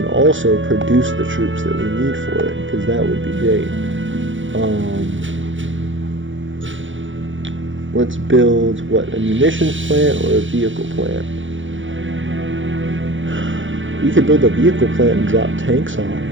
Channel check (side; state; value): left; late; 0.56 ms